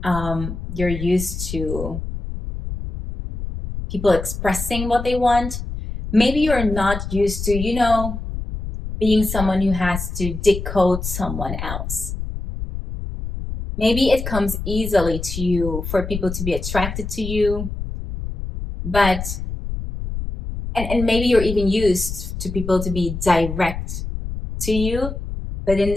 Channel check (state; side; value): noise; left; rumble, 6 dB below the sound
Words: you're used to people expressing what they want. Maybe you're not used to, being someone who has to decode someone else. Maybe it comes easily to you for people to be attracted to you, but and maybe you're even used to people to be direct to you, but in